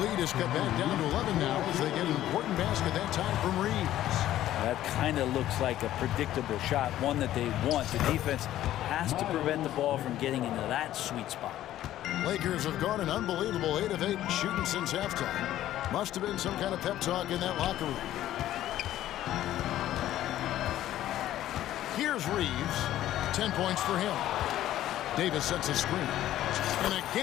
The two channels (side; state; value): right; quieter; 13.2 dB